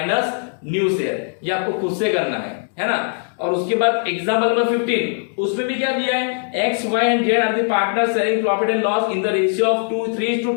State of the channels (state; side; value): silent; right; digital silence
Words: new share. ये आपको खुद से करना है ना। और उसके बाद एग्जांपल नंबर 15 उसमें भी क्या दिया है? x, y and z are the partner sharing profit and loss in the ratio of